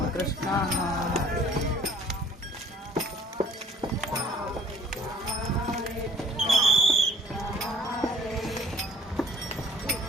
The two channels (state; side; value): normal; both; correlation 0.54